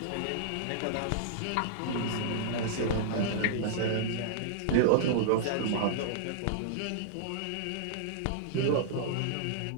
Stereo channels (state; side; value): different; both; correlation -0.01